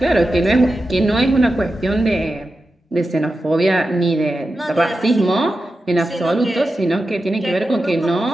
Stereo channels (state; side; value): normal; both; correlation 0.91